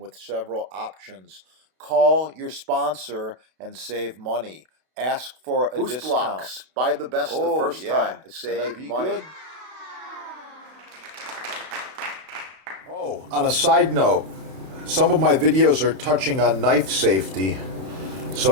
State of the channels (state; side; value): late; left; 32 ms